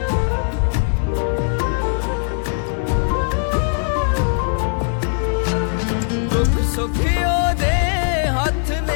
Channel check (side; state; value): right; silent; digital silence